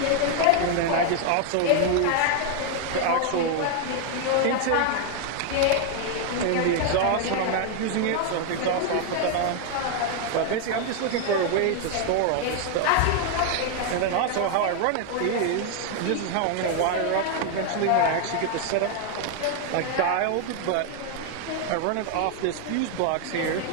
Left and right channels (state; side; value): different; both; correlation 0.01